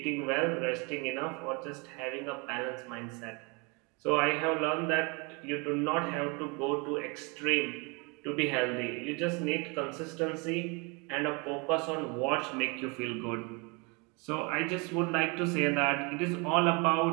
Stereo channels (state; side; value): quieter; left; 30.3 dB